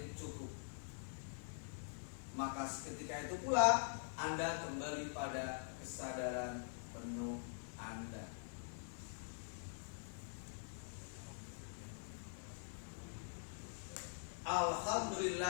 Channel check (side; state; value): right; silent; digital silence